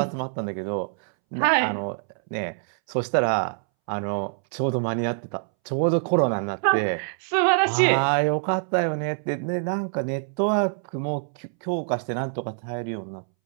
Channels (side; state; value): left; silent; 62 dB below the other